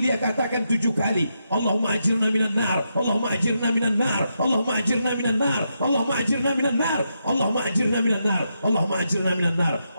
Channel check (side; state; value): both; inverted; correlation -0.83